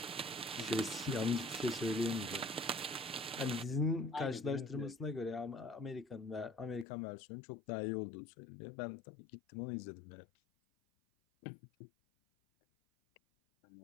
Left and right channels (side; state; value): right; drops out; at 6.9 s